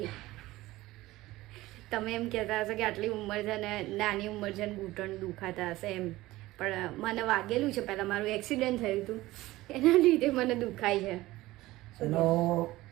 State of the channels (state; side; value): quieter; left; 17.9 dB